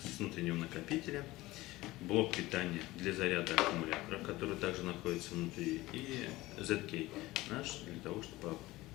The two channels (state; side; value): quieter; right; 18.8 dB